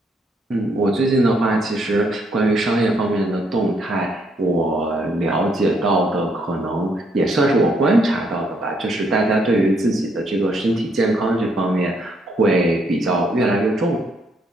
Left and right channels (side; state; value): both; normal; correlation 0.72